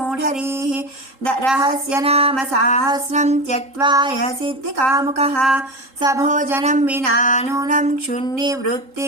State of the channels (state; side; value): late; left; 3.8 ms